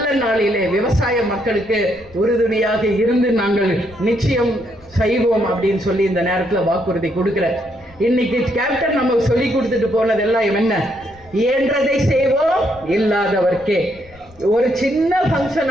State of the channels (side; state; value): left; noise; rumble, 24 dB below the sound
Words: நாளிலே விவசாய மக்களுக்கு உறுதுணையாக இருந்து நாங்கள் நிச்சயம் செய்வோம் அப்படின்னு சொல்லி இந்த நேரத்தில் வாக்குறுதி கொடுக்கிறேன். இன்னைக்கு கேப்டன் நமக்கு சொல்லி கொடுத்துட்டு போனதெல்லாம் என்ன? இயன்றதை செய்வோம், இல்லாதவர்க்கே. ஒரு சின்ன